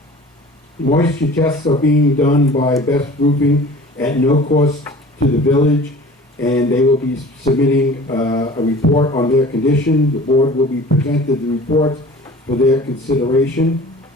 Moisture tests are being done by Best Roofing at no cost to the village, and they will be submitting a report on their condition. The board will be presented the reports for their consideration.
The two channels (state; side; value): normal; both; correlation 0.44